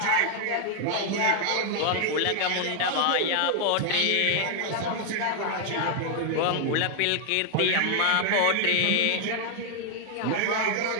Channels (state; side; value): different; both; correlation 0.00